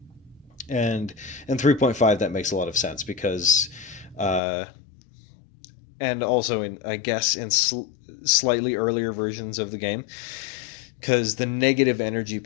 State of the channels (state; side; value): drops out; right; at 4.4 s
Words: And in 3.5, that makes a lot of sense because, and also in slightly earlier versions of the game, because the negative energy